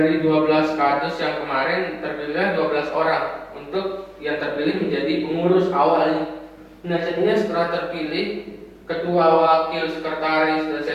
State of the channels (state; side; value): identical; both; correlation 1.00